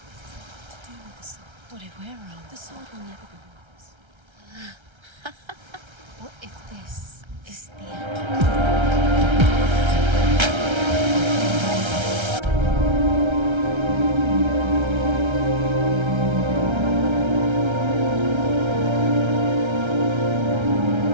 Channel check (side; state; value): left; late; 1.3 ms